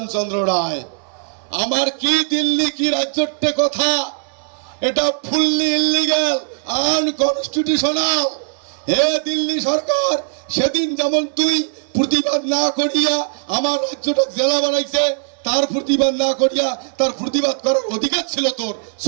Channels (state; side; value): silent; left; 67 dB below the other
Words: রায়। আমার কি দিল্লি কি রাজ্যের কথা, এটা ফুললি ইলিগাল আনকনস্টিটিউশনাল। হে দিল্লি সরকার, সেদিন যেমন তুই প্রতিবাদ না করিয়া আমার রাজ্যটা জেলা বানাইছে, তার প্রতিবাদ না করিয়া তার প্রতিবাদ করার অধিকার ছিল তোর,